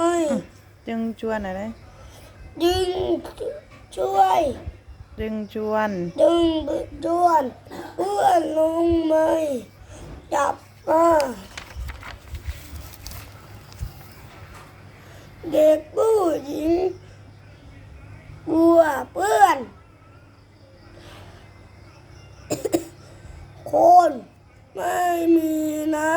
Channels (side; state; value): both; identical; correlation 1.00